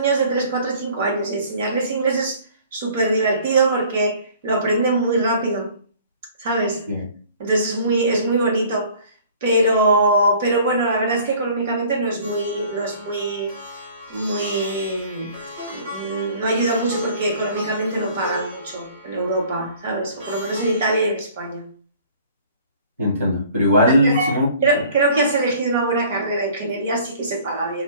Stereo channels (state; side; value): inverted; both; correlation -0.52